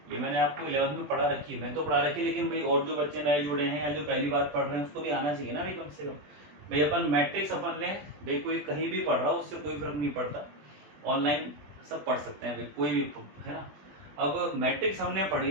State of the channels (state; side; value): late; left; 20 ms